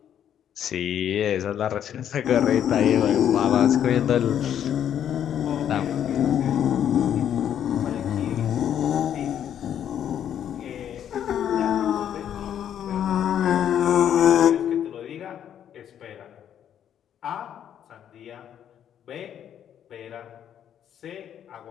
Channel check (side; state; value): right; quieter; 9.7 dB